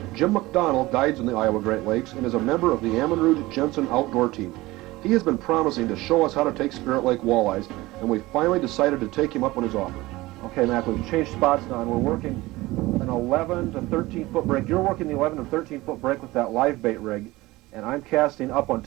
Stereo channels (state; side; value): quieter; left; 19.6 dB